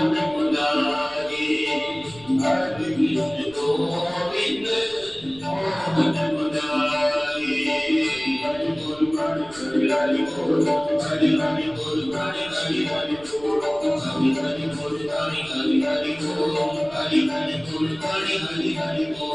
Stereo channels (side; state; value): right; noise; rumble, 21 dB below the sound